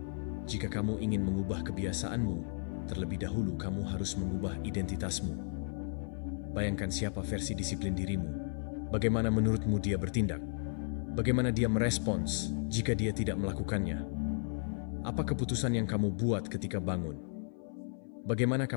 Jika kamu ingin mengubah kebiasaanmu, terlebih dahulu kamu harus mengubah identitasmu. Bayangkan siapa versi disiplin dirimu. Bagaimana menurutmu dia bertindak? Bagaimana dia merespons jika dia tidak melakukannya? Apa keputusan yang kamu buat ketika bangun? Bagaimana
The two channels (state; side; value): silent; right; 55 dB below the other